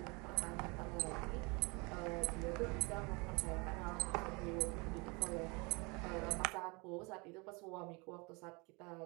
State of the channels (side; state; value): left; quieter; 28.5 dB